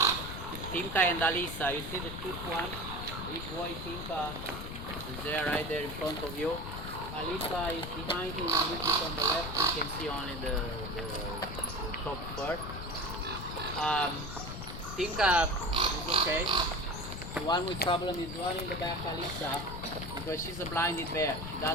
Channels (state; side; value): noise; left; rumble, 8 dB below the sound